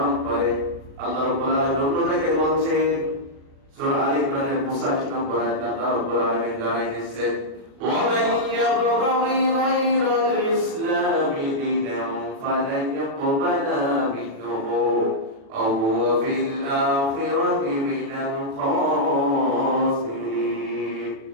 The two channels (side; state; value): left; late; 36 ms